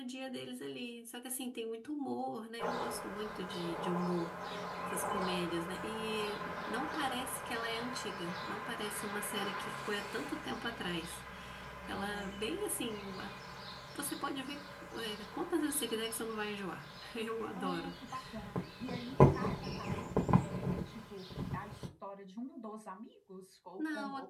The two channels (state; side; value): identical; both; correlation 1.00